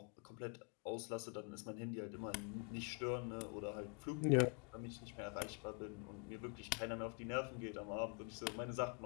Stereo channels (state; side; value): quieter; right; 36.3 dB